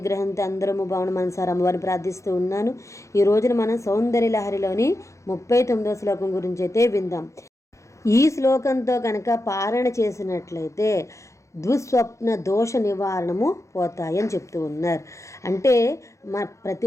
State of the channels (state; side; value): late; right; 0.15 ms